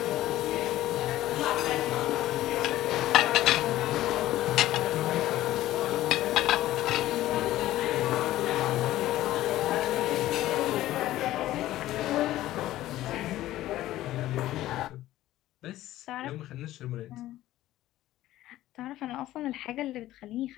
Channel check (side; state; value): right; quieter; 14.9 dB